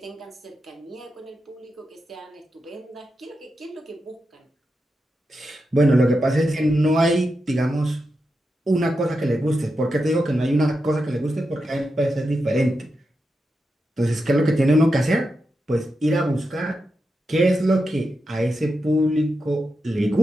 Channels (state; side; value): normal; both; correlation 0.88